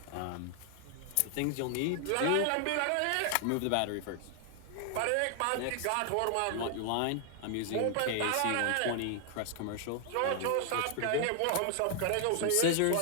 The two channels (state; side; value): different; both; correlation 0.00